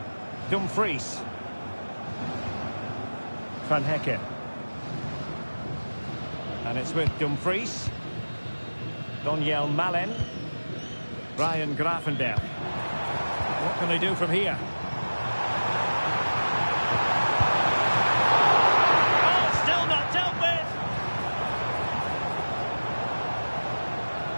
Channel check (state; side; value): inverted; both; correlation -1.00